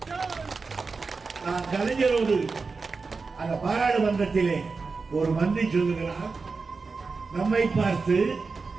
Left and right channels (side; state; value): left; quieter; 4.4 dB